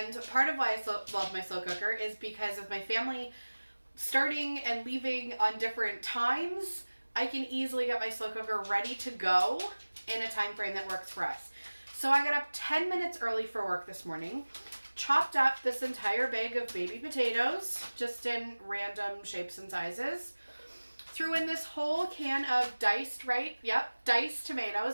part of why I love my slow cooker is because of my family starting and leaving on different times. I can easily get my slow cooker ready to go in a time frame that works for us. So I got up 10 minutes early for work this morning, chopped up this entire bag of baby potatoes, just in random shapes and sizes, threw in this whole can of diced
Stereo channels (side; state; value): both; inverted; correlation -1.00